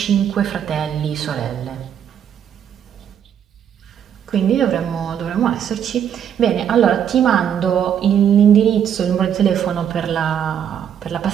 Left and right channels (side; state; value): left; quieter; 9.0 dB